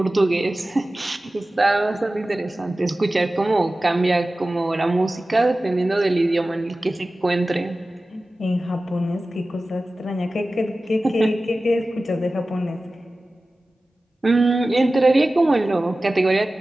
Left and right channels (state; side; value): normal; both; correlation 0.96